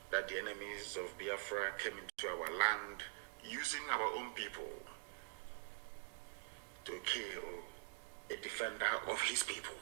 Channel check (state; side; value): silent; left; digital silence